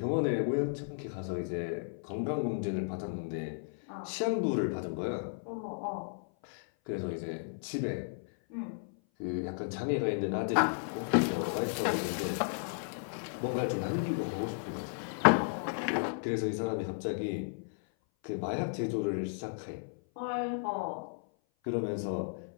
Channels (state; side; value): silent; right; 55 dB below the other